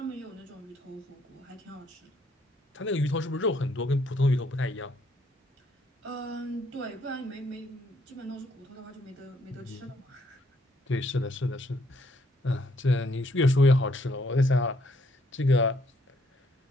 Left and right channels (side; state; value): both; normal; correlation 0.68